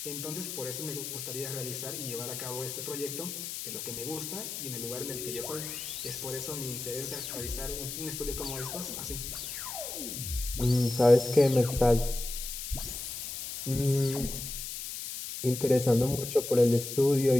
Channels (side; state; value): left; noise; hiss, 6 dB below the sound